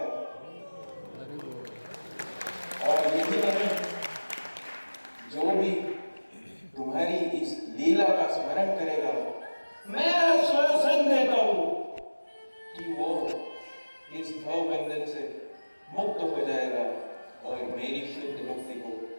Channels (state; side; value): inverted; both; correlation -1.00